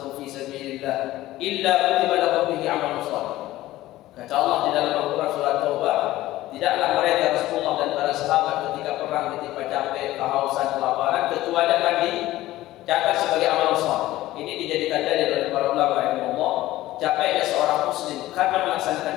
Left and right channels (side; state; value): right; quieter; 16.1 dB